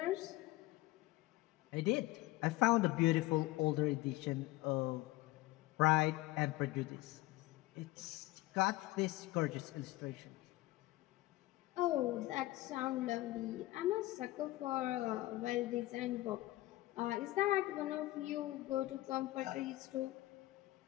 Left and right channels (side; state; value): right; quieter; 18.3 dB